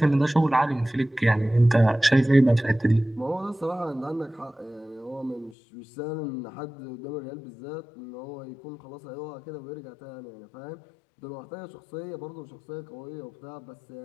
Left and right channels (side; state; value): right; drops out; at 5.6 s